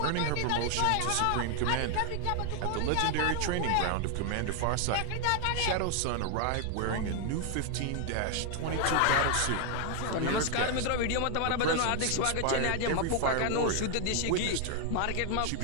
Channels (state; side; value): different; both; correlation 0.00